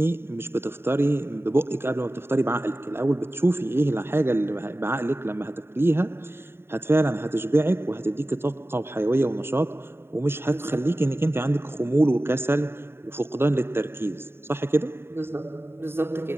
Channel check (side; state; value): left; late; 0.11 ms